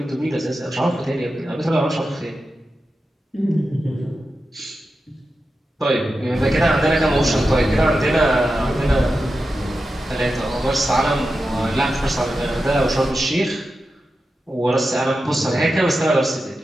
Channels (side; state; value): both; normal; correlation 0.91